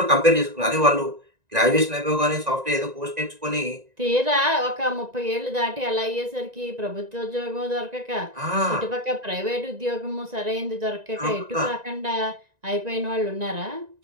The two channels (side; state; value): left; late; 1.9 ms